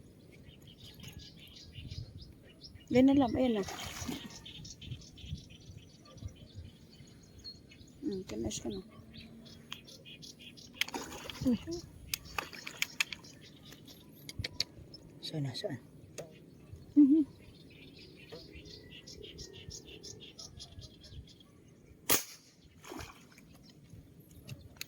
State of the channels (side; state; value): both; identical; correlation 1.00